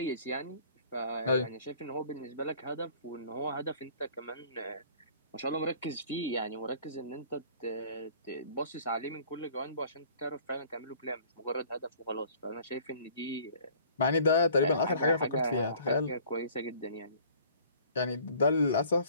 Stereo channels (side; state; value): both; inverted; correlation -0.53